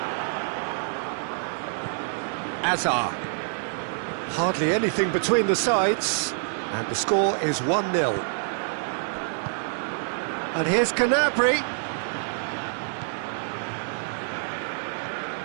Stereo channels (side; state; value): left; silent; digital silence